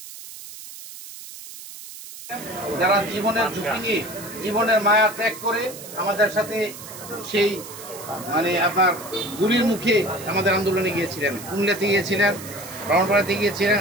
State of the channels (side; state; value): right; noise; hiss, 14 dB below the sound